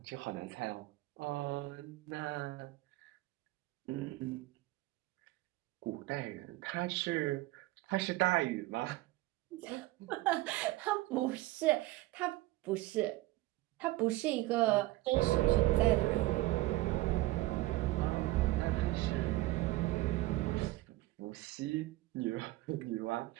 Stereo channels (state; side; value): quieter; left; 18.7 dB